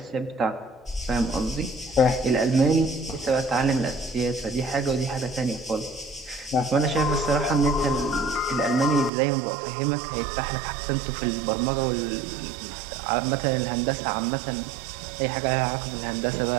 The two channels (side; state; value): left; drops out; at 9.1 s